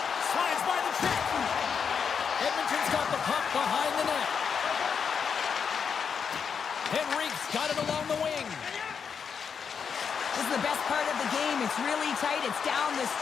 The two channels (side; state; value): right; quieter; 6.6 dB